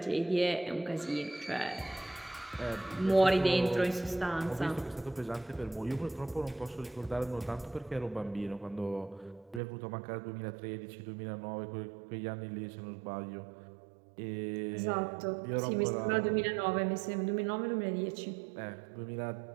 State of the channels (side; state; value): left; drops out; at 9.6 s